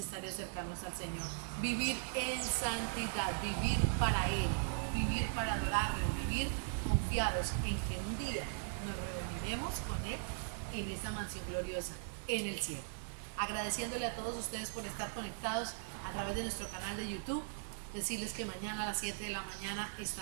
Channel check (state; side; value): silent; left; digital silence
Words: acercarnos al Señor. Vivir en santidad, vivir para Él, vivir para adorarle, vivir confiados en que un día nos reuniremos con Él en esta mansión gloriosa, en el cielo. Agradeciéndole a todos ustedes por estar conectados a través de nuestro canal de YouTube. Decirles que mañana a las 7 de la mañana